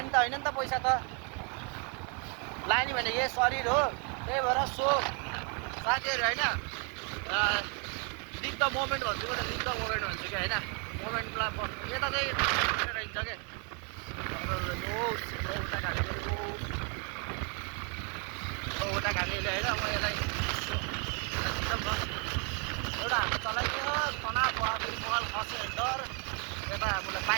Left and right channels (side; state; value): left; quieter; 37.1 dB